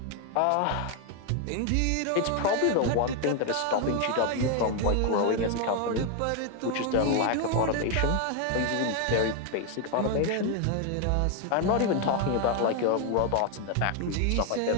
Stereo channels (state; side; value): different; both; correlation 0.01